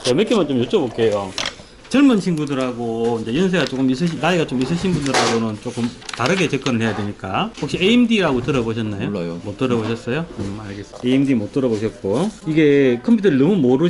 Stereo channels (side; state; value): both; identical; correlation 1.00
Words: 몇 개만 좀 여쭤볼게요. 젊은 친구들하고 이제 연세가 조금 나이가 좀 있으신 분들하고는 조금 다르게 접근을 해야 되니까. 혹시 AMD라고 들어보셨나요? 몰라요. 못 들어보셨어요? 알겠습니다. AMD 못 들어보셨고. 이게 컴퓨터를 너무